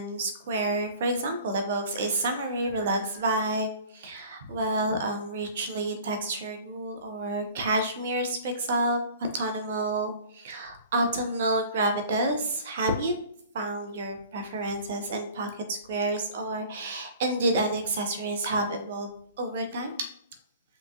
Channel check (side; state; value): both; inverted; correlation -0.46